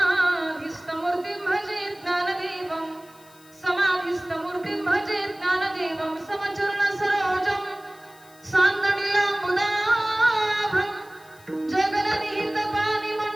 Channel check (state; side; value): noise; left; hiss, 26 dB below the sound